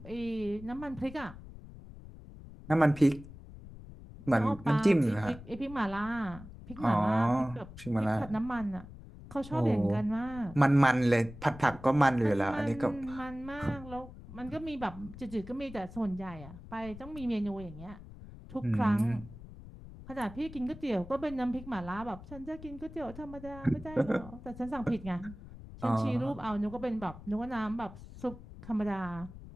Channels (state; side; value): noise; left; rumble, 16 dB below the sound